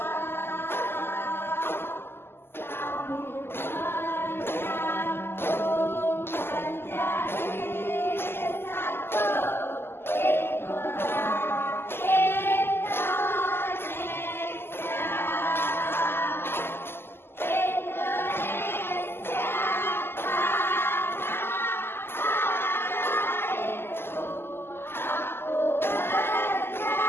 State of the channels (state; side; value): late; right; 0.11 ms